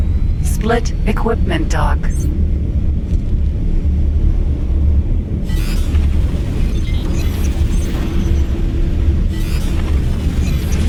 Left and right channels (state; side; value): identical; both; correlation 1.00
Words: Split Equipment Dock.